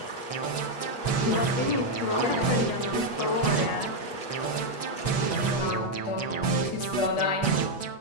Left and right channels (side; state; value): right; late; 8.3 ms